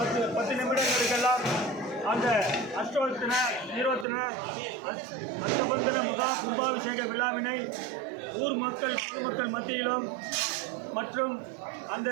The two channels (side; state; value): left; drops out; at 4.0 s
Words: நிமிடங்களுக்கெல்லாம் அந்த அஷ்டோத்தன நிரோத்தன அஷ்டபந்தன கும்பாபிஷேக விழாவினை ஊர் மக்கள் பொதுமக்கள் மத்தியிலும் மற்றும் அந்த